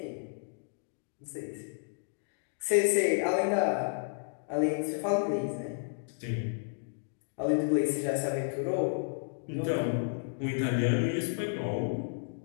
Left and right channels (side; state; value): right; silent; digital silence